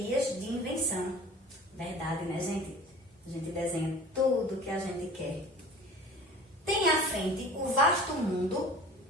de invenção. Verdade, né, gente? A gente desenha tudo que a gente quer. Tem à frente o vasto mundo,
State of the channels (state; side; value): normal; both; correlation 0.42